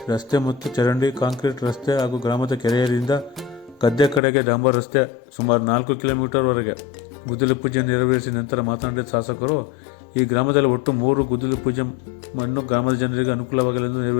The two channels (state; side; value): drops out; right; at 4.2 s